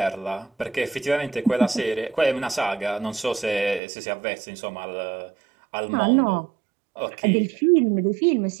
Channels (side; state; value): left; drops out; at 3.8 s